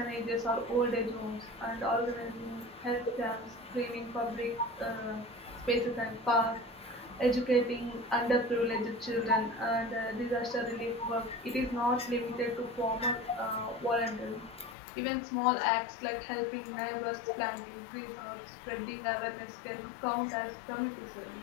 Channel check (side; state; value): right; drops out; at 14.8 s